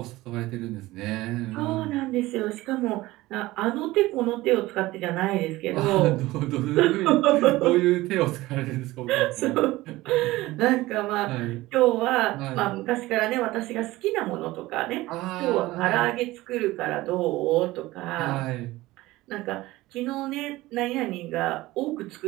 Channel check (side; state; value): left; quieter; 18.5 dB